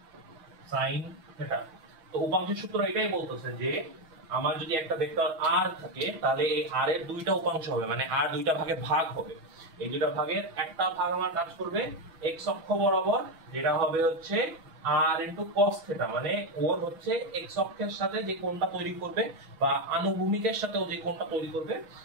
sin থিটা। তো উপাংশের সূত্র এটাই বলতেছে যে আমার যদি একটা ভেক্টর r থাকে, তাহলে এই r এর দুইটা উপাংশ হবে, মানে r দুইটা ভাগে ভাগ হবে। এই দুইটা ভাগের একটা ভাগ আমার কাজ করবে x অক্ষ বরাবর, যেটা হবে হচ্ছে r cos থিটা, মানে ওর হচ্ছে x অক্ষের সাথে যে কোণটা তৈরি করবে বা আনুভূমিকের সাথে ও যে কোণটা তৈরি করবে,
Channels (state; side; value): late; left; 6.2 ms